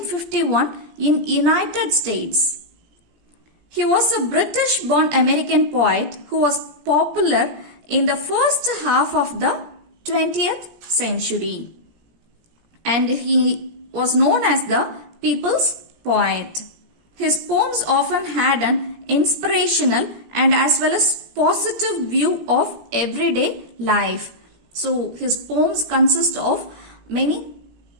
in United States. He was a British-born American poet who was popular in the first half of the 20th century, and he was known as the people's poet. His poems often had an inspirational and as well as positive view of everyday life. So his poems consist of many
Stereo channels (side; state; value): left; late; 17 ms